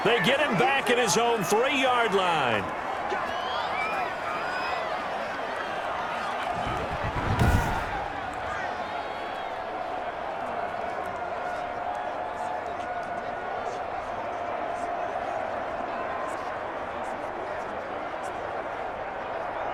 They get him back at his own 3-yard line.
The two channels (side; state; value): both; identical; correlation 1.00